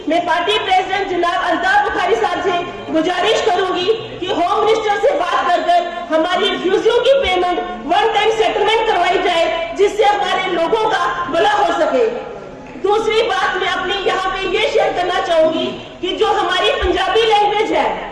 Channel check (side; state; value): both; identical; correlation 1.00